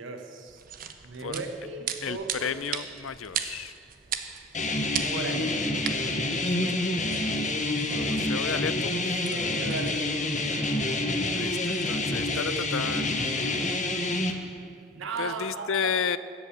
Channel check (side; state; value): both; normal; correlation 0.40